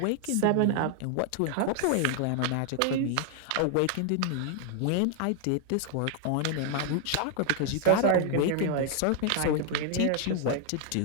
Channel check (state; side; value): different; both; correlation 0.00